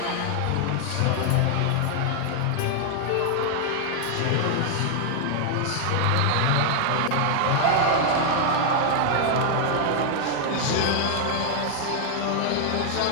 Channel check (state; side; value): different; both; correlation 0.00